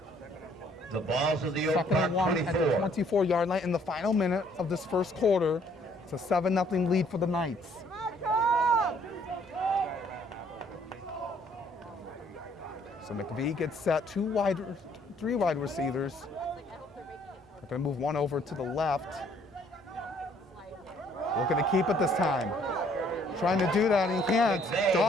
The balls of the Oak 2nd and 1 Park at the 24-yard line in the final minute of this first quarter. It's a 7-0 lead for the Knights. So McVie gets set, 3 wide receivers. They're going to move one over to the left. Looking to keep it this time. Trying to do that, and he can't.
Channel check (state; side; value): normal; both; correlation 0.63